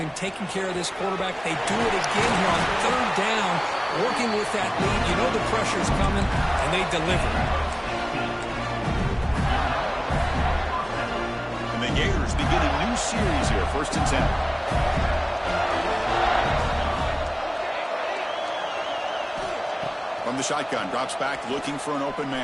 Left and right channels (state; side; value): identical; both; correlation 1.00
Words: taking care of this quarterback. They do it again here on third down, working with that lead. You know the pressure's coming, and they deliver. And the Gators begin a new series here, 1st and 10. From the shotgun, drops back looking for an open